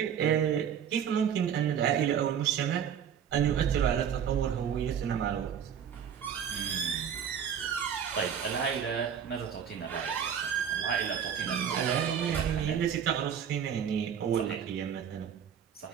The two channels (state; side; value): quieter; left; 8.3 dB